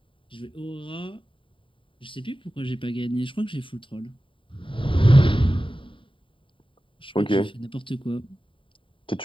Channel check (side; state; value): right; late; 0.25 ms